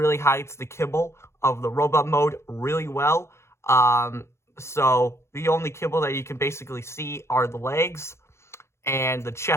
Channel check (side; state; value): right; late; 0.13 ms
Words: hides the kibble of the Robot Mode really well. So the only kibble that you can basically see are the legs and the